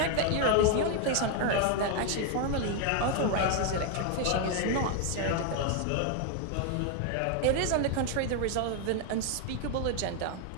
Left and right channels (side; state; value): both; different; correlation 0.00